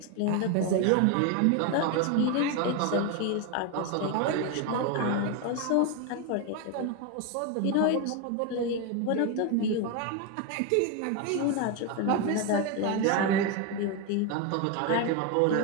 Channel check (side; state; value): both; different; correlation 0.02